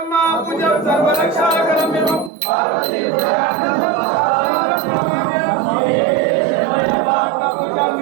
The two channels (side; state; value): left; drops out; at 2.3 s